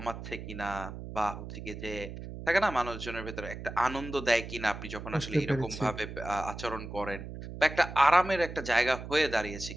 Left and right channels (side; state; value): right; noise; hum, 10 dB below the sound